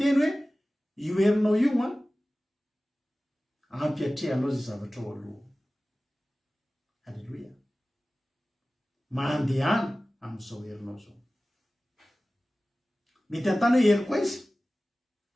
hoe io herinao io a, ampiatrehanao zay zavatra ao aloha. Halleluja. Mandehana amin'izao herinao zao. Mety antany hoe hery koa izy.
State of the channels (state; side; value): normal; both; correlation 0.97